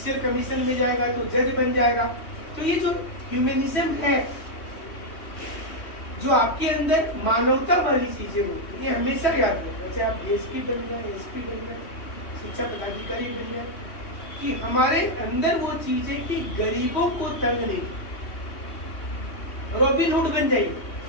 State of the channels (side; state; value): right; late; 3.2 ms